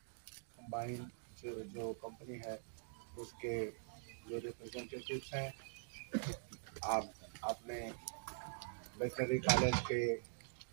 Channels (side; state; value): left; silent; digital silence